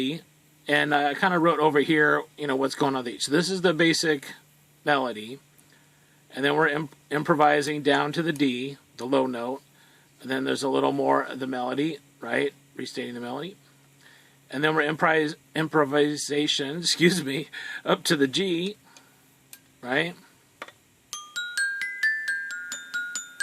and I kind of wrote over here, you know, what's going on with each. So this is the basic melody. And then we're improvising down to the D, the low note. And then there's a little more of the melody, right? Restating the melody. And then we're improvisation, excuse me, up to the G, right?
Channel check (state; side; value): identical; both; correlation 1.00